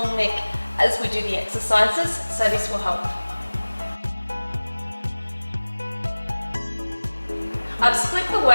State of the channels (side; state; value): both; inverted; correlation -1.00